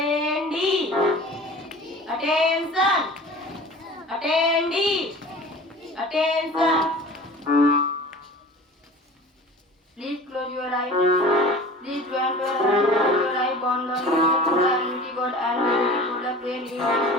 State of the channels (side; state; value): both; normal; correlation 0.40